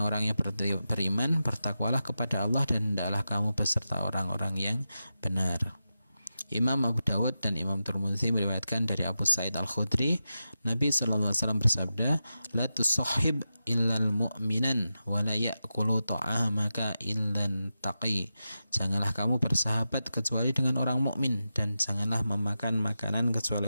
yang beriman, bertakwalah kepada Allah dan hendaklah kamu beserta orang-orang yang benar. Imam Abu Dawud dan Imam Tirmidzi meriwayatkan dari Abu Sa'id Al-Khudri, Nabi SAW bersabda, "La tusahhib illal mu'minan wa la ya'kulu ta'amaka illan taqi." Janganlah kamu bersahabat kecuali dengan orang mukmin, dan janganlah memakan makanan kecuali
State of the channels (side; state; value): both; inverted; correlation -0.90